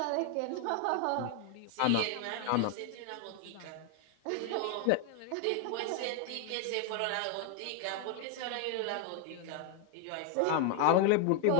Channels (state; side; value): different; both; correlation 0.00